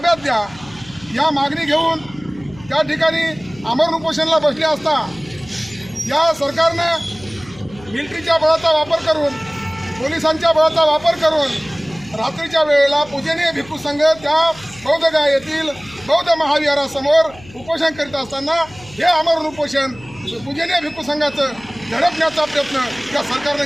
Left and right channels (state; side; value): noise; left; hum, 21 dB below the sound